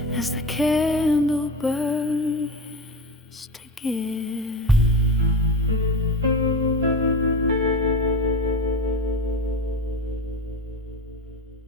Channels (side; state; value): both; normal; correlation 0.25